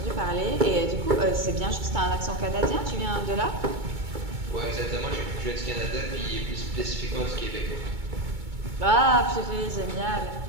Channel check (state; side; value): late; left; 2.2 ms